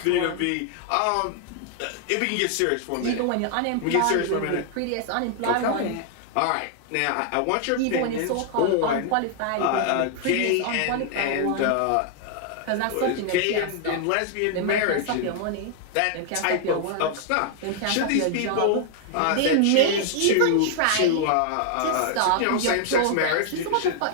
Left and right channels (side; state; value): both; different; correlation 0.00